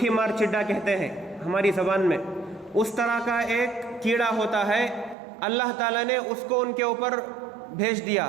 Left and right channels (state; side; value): drops out; left; at 5.2 s